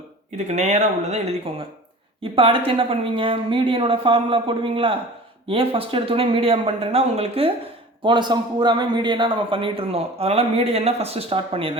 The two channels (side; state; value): both; normal; correlation 0.41